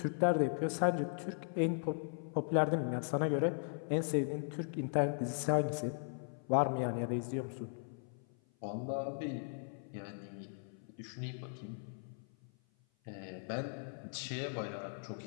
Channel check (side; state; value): right; silent; 52 dB below the other